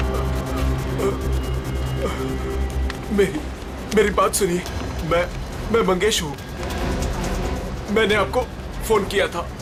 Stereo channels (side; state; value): both; identical; correlation 1.00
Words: मेरी बात सुनिए। मैं मंगेश हूँ। मैंने आपको फोन किया था।